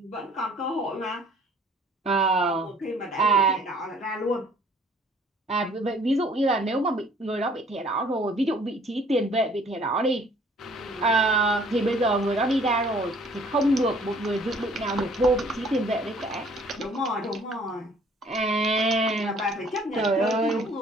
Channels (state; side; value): normal; both; correlation 0.57